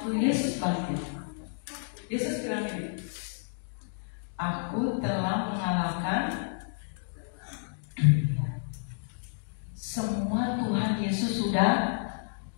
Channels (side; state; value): right; silent; digital silence